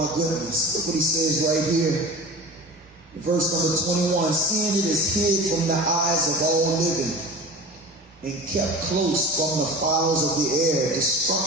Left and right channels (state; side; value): normal; both; correlation 0.35